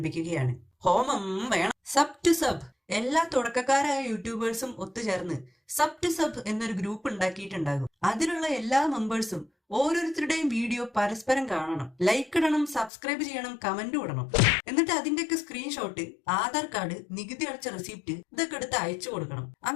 ഹോമം വേണം. Sub to sub. എല്ലാ തുടക്കക്കാരായ യൂട്യൂബേഴ്സും ഒത്തുചേർന്ന് സബ് ടു സബ് എന്നൊരു ഗ്രൂപ്പ് ഉണ്ടാക്കിയിട്ടുണ്ടാകും. അതിലുള്ള എല്ലാ മെമ്പേഴ്സും ഓരോരുത്തരുടെയും വീഡിയോ പരസ്പരം കാണണം, ലൈക്ക് ഇടണം, സബ്സ്ക്രൈബ് ചെയ്യണം, കമന്റ് ഇടണം. എന്നിട്ട് അതിന്റെയൊക്കെ സ്ക്രീൻഷോട്ട്, ആധാർ കാർഡ്, നികുതി അടച്ച റെസിപ്റ്റ് ഇതൊക്കെ എടുത്ത് അയച്ചു കൊടുക്കണം.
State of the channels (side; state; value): right; drops out; at 12.9 s